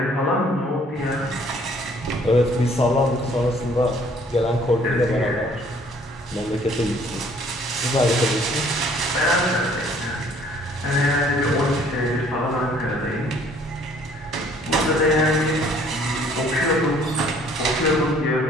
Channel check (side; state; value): both; normal; correlation 0.59